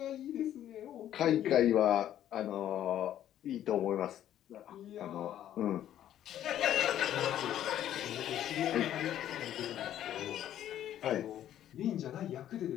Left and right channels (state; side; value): quieter; right; 11.5 dB